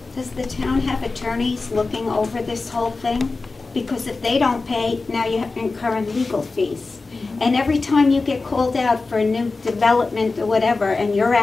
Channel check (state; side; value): quieter; right; 3.8 dB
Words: Does the town have attorneys looking over this whole thing? Because if they don't pay, now you have to incur legal fees. And every time you get called out for a new development or whatever, and you're